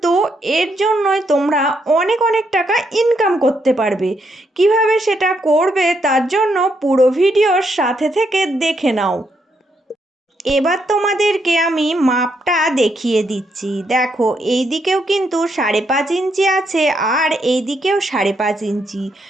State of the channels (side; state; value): both; normal; correlation 0.77